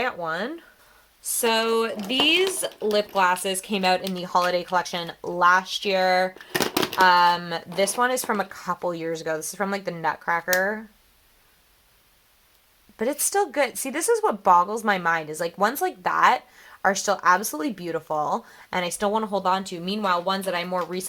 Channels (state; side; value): identical; both; correlation 1.00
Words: one. So these lip glosses came out in the holiday collection last year. This one is from a couple years ago. This is from like the Nutcracker. But it's still good. See, this is what boggles my mind is like ones like that are still absolutely beautiful and I still want to hold on to. Meanwhile, ones that I more